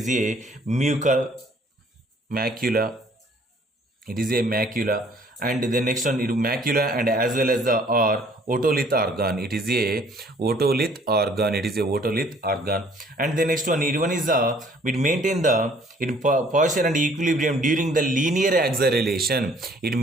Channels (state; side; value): normal; both; correlation 0.58